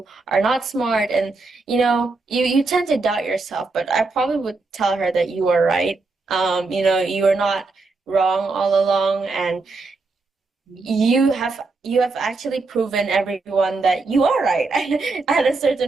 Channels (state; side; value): quieter; left; 3.8 dB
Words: are not smart, and you tend to doubt yourself, but I probably would tell her that you are right. You are not wrong all along, and you have actually proven everyone that you are right at a